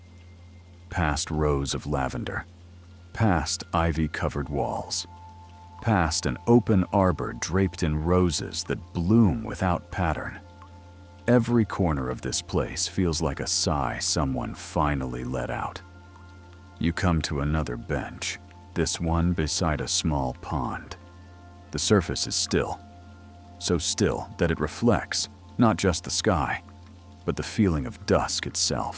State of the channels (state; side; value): identical; both; correlation 1.00